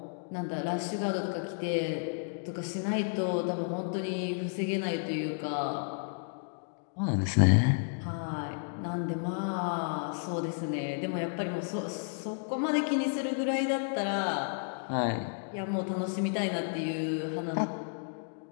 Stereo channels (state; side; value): silent; right; digital silence